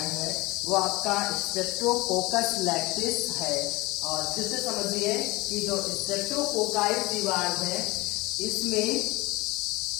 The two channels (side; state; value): right; quieter; 21.8 dB